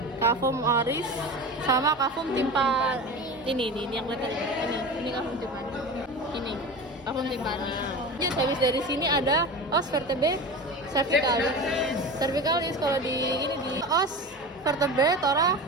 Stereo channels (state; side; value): normal; both; correlation 0.30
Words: Cavum oris sama cavum timpa ini yang kelihatan ini cavum timpani. Ini cavum timpani. Jadi habis dari sini ada os vertebrae cervicalis kalau di os vertebrae